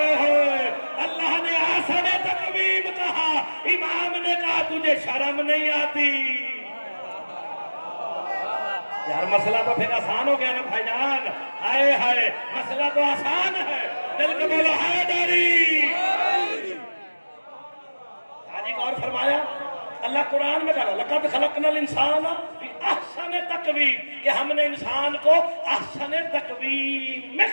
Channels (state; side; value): inverted; both; correlation -1.00